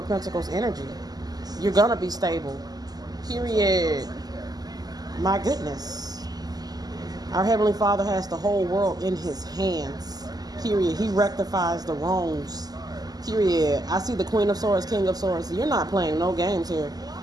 Pentacles energy. You're going to be stable. Period. My goodness. Our Heavenly Father has the whole world in His hands. Period. He rectifies the wrongs. Period. I see the Queen of Swords, King of Swords. You're not playing no games here.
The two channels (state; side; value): late; left; 0.19 ms